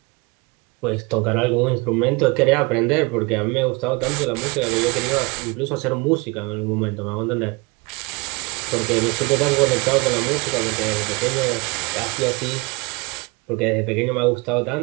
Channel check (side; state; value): left; quieter; 26.8 dB